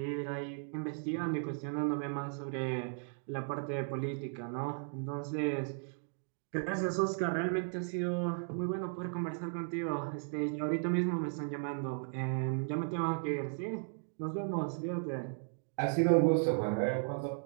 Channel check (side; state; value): left; silent; 54 dB below the other